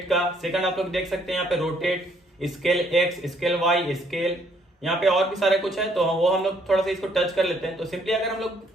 का। सेकंड आप लोग देख सकते हैं यहाँ पे rotate, scale X, scale Y, scale, यहाँ पे और भी सारे कुछ है। तो वो हम लोग थोड़ा सा इसको टच कर लेते हैं। तो सिंपली अगर हम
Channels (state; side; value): normal; both; correlation 0.67